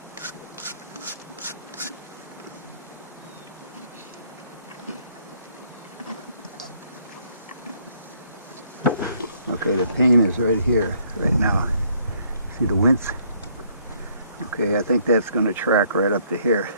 Okay, the pain is right here, right now. See the wince? Okay, I think that's going to track right up to here.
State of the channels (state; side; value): inverted; both; correlation -0.65